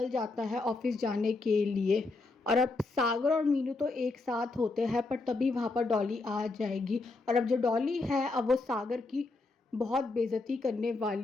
जाता है ऑफिस जाने के लिए। और अब सागर और मीनू तो एक साथ होते हैं, पर तभी वहाँ पर डॉली आ जाएगी। और अब जो डॉली है अब वो सागर की बहुत बेइज्जती करने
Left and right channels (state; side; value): quieter; right; 3.5 dB